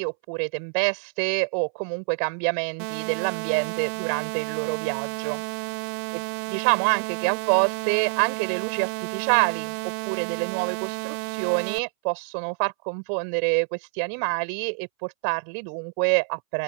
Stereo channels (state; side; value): silent; left; 61 dB below the other